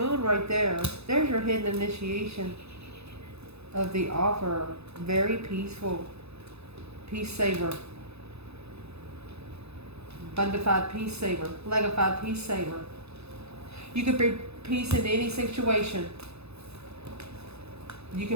right there. There's your hidden initiation of the offer. Very peaceful. Peace saver. Bundified peace saver. Legified peace saver. You could bring peace into any situation. You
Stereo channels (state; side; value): late; left; 0.79 ms